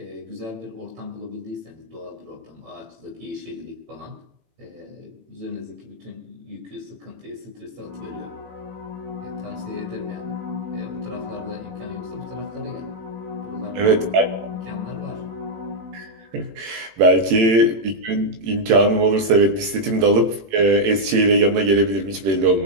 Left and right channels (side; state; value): left; late; 18 ms